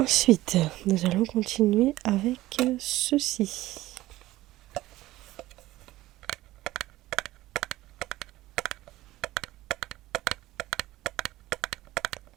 nous allons continuer avec ceci.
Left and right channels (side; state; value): left; quieter; 16.7 dB